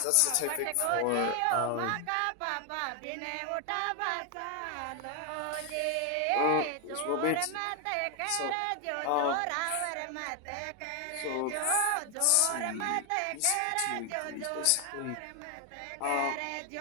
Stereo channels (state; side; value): different; both; correlation 0.00